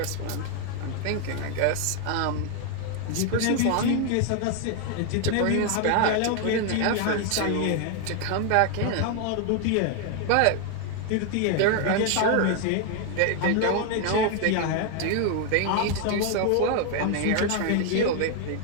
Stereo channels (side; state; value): both; different; correlation 0.00